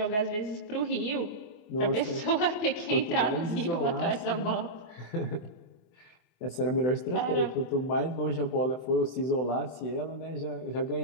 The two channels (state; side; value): late; right; 24 ms